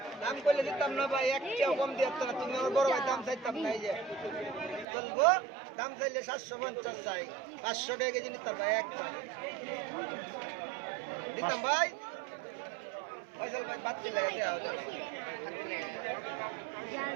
দাম করলে দিতাম না ভাই, এক টাকা কম দিয়ে না। তুমি আমার বড় ভাই, দাম চাইতাম না। এই যে চলবো, দাম চাইলে 750 চাই, 500 টাকা কেজি নিতাম ভাই। একটা দিতাম ভাই। ফয়সাল ভাই বাদ দিলে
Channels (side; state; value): left; drops out; at 4.9 s